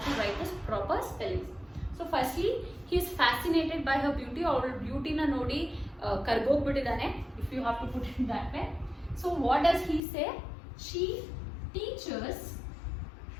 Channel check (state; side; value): drops out; right; at 10.0 s